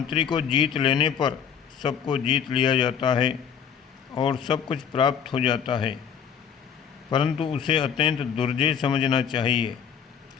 को जीत लेने पर सबको जीत लिया जाता है और सब कुछ प्राप्त हो जाता है, परंतु उसे अत्यंत दुर्जय समझना चाहिए।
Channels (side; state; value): right; quieter; 7.6 dB